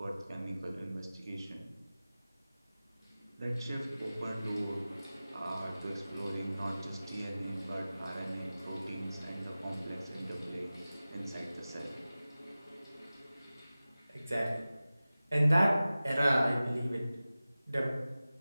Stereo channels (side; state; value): both; inverted; correlation -0.97